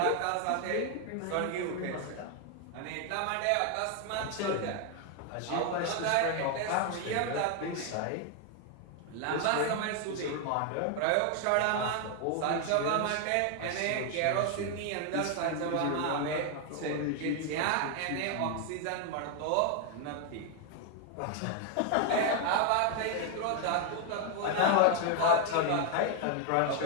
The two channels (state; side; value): different; both; correlation 0.00